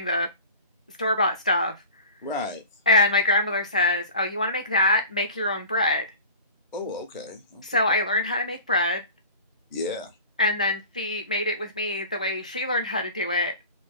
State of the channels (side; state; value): both; inverted; correlation -0.40